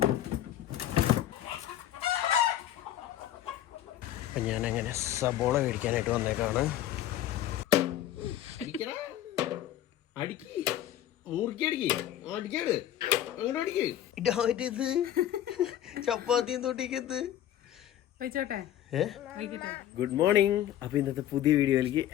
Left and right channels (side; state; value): right; quieter; 12.0 dB